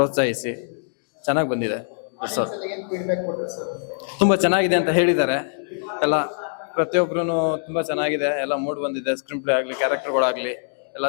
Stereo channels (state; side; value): silent; right; digital silence